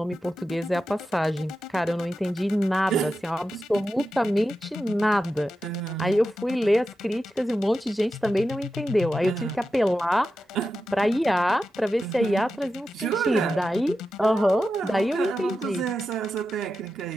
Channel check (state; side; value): normal; both; correlation 0.91